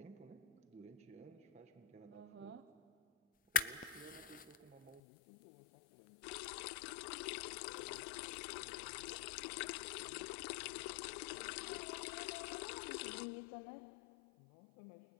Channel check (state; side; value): drops out; right; at 5.0 s